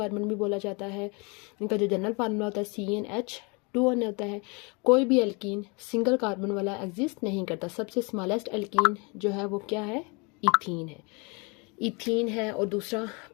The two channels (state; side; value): quieter; right; 30.5 dB